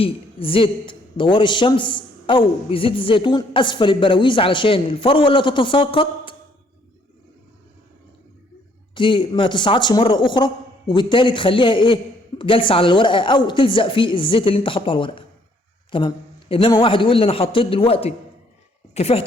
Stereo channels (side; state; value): both; normal; correlation 0.65